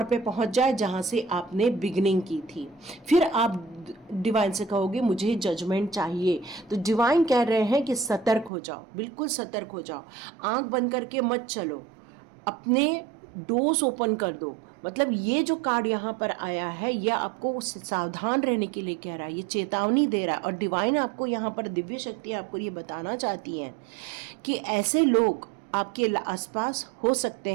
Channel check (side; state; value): left; drops out; at 8.5 s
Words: पे पहुंच जाए जहां से आपने बिगिनिंग की थी। फिर आप डिवाइन से कहोगे मुझे जजमेंट चाहिए, तो डिवाइन कह रहे हैं कि सतर्क हो जाओ, बिल्कुल सतर्क हो जाओ, आंख बंद करके मत चलो, अपने डोर्स ओपन कर दो। मतलब ये जो कार्ड यहाँ पर आया है ये आपको सावधान रहने के लिए कह रहा है, ये चेतावनी दे रहा है। और डिवाइन आपको यहाँ पर दिव्य शक्ति आपको ये बताना चाहती हैं कि ऐसे लोग आपके आसपास हो सकते